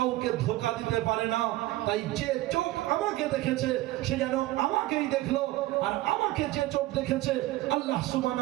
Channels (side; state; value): left; quieter; 17.3 dB